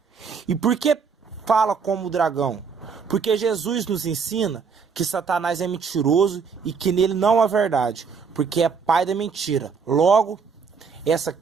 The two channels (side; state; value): left; quieter; 5.8 dB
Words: E por que fala como o dragão? Porque Jesus nos ensina que Satanás é mentiroso e que nele não há verdade, porque é pai da mentira. Logo, essa